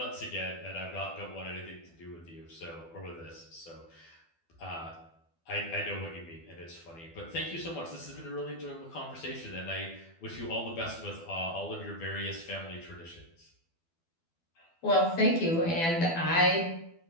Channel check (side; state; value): right; late; 12 ms